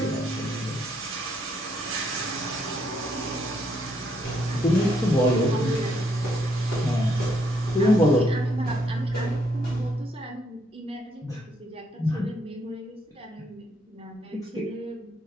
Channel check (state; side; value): normal; both; correlation 0.73